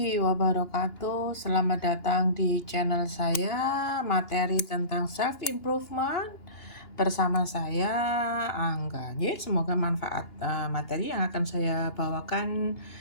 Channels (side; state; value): right; late; 2.9 ms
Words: wabarakatuh. Selamat datang di channel saya, materi tentang self improvement bersama saya Angga. Semoga manfaat materi yang akan saya bawakan